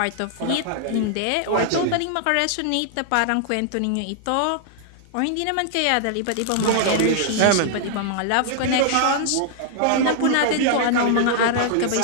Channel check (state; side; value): different; both; correlation 0.00